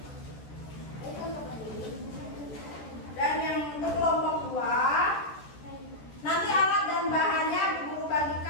Dan yang untuk kelompok 2, nanti alat dan bahannya ibu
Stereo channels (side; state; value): right; late; 14 ms